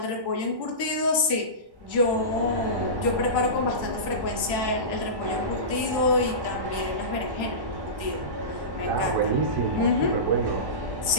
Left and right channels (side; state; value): left; late; 1.1 ms